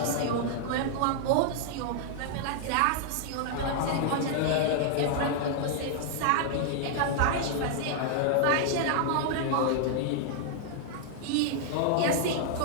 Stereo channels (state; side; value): different; both; correlation -0.01